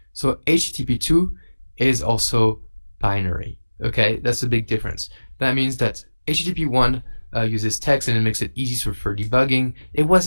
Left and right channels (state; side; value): inverted; both; correlation -1.00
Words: So HTTP2 is also binary. Okay, that's a big difference. That means that HTTP1 uses text and it makes it easy for debugging. It